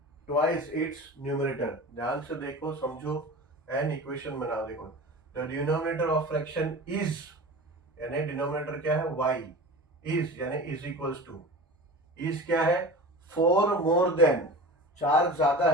twice its numerator. ध्यान से देखो, समझो एंड इक्वेशन बनाओ. देखो, the denominator of fraction is, यानी डिनोमिनेटर क्या है? y. इज यानी इज इक्वल्स टू, इज क्या है? 4 मोर देन, 4 ज्यादा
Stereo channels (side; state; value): both; normal; correlation 0.34